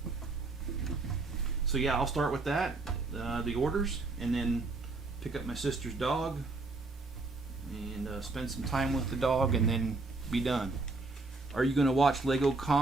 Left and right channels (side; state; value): left; quieter; 3.5 dB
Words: So yeah, I'll start with that, the orders, and then pick up my sister's dog and spend some time with the dog, and then be done. Are you going to watch Lego